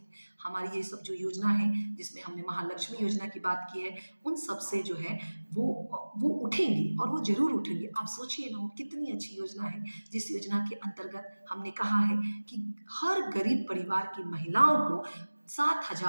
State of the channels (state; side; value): inverted; both; correlation -1.00